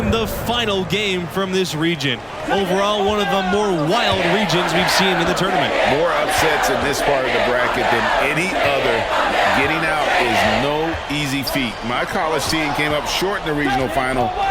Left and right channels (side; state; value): both; identical; correlation 1.00